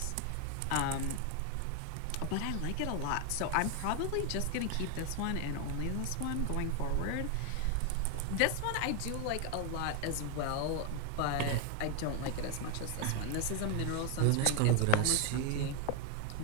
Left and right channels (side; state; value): both; different; correlation 0.01